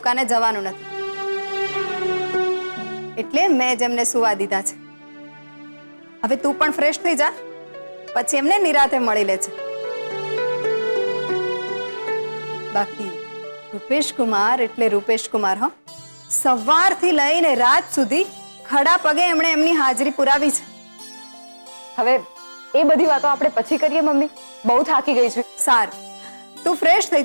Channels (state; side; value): inverted; both; correlation -1.00